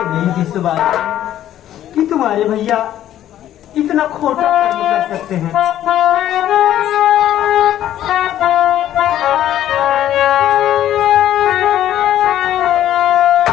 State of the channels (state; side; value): quieter; right; 12.0 dB